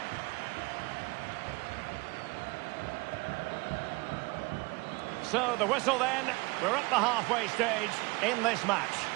So the whistle then, we're at the halfway stage in this match.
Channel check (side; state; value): left; quieter; 25.6 dB